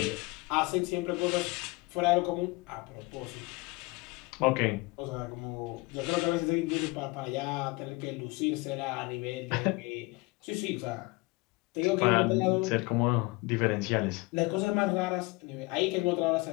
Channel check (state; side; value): quieter; right; 24.6 dB